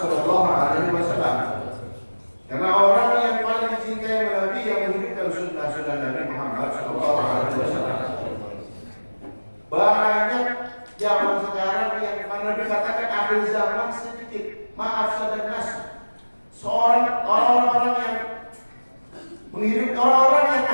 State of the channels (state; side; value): inverted; both; correlation -1.00